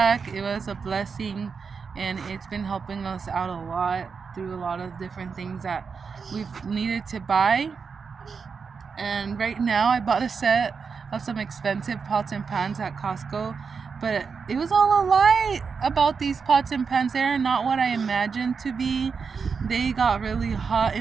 It was a blessing, and it's been helping us out a lot through a lot of different things that we've needed to buy. And right now I bought a set of some expensive pots and pans at Costco, but it was all a lie about these pots and pans. They're not what I imagined to be. They got really hot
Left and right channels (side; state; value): left; quieter; 5.6 dB